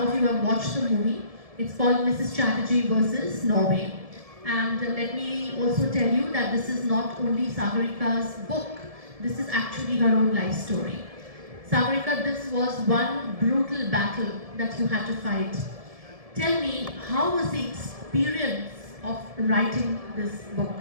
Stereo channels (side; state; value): left; late; 1.7 ms